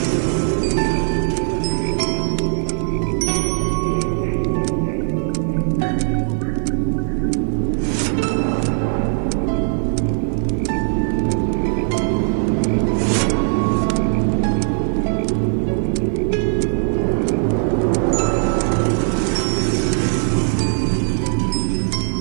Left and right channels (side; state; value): left; silent; digital silence